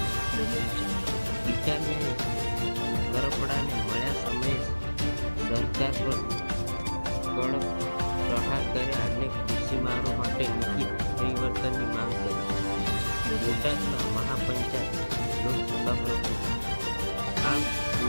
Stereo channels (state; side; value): inverted; both; correlation -1.00